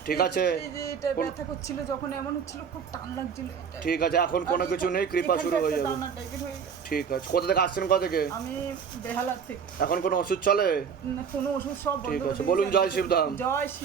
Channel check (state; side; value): quieter; left; 6.8 dB